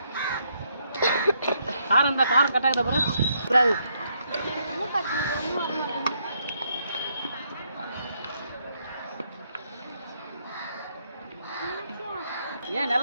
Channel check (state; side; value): inverted; both; correlation -0.75